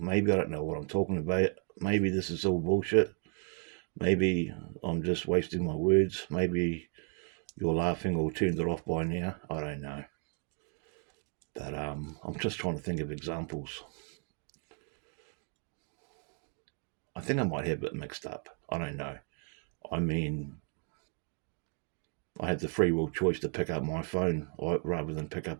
I don't know what I'm talking about. Maybe this is all bullshit. Maybe I'm just wasting my words. Maybe you're laughing or turned it off by now. I don't know. But I'm just trying to think of examples. I think I might have it mixed up. I don't know. I mean, I had the free will choice to pick up my phone rather than pick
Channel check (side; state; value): left; quieter; 39.7 dB